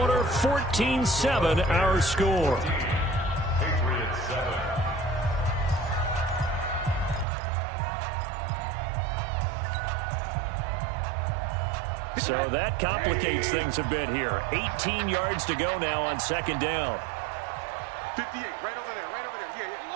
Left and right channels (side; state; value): left; drops out; at 7.2 s